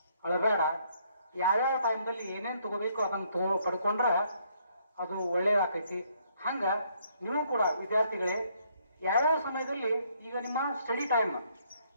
ಅಳಬೇಡ, ಯಾವ್ಯಾವ ಟೈಮ್ದಲ್ಲಿ ಏನೇನು ತಗೋಬೇಕು ಅದನ್ನು ಪಡ್ಕೊಂಡ್ರೆ ಅದು ಒಳ್ಳೇದಾಕೈತಿ. ಹಂಗ ನೀವು ಕೂಡ ವಿದ್ಯಾರ್ಥಿಗಳೇ, ಯಾವ್ಯಾವ ಸಮಯದಲ್ಲಿ, ಈಗ ನಿಮ್ಮ ಸ್ಟಡಿ ಟೈಮ್,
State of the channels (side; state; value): both; inverted; correlation -0.69